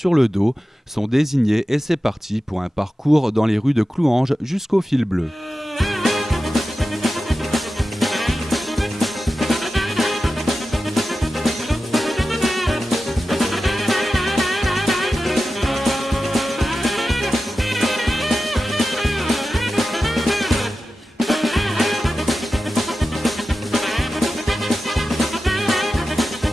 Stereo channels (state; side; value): normal; both; correlation 0.93